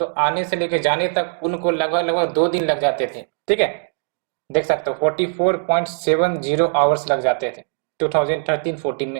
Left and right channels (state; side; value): silent; left; 65 dB below the other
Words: आने से लेकर जाने तक उनको लगभग लगभग 2 दिन लग जाते थे, ठीक है। देख सकते हो 44.70 आवर्स लग जाते थे 2013-14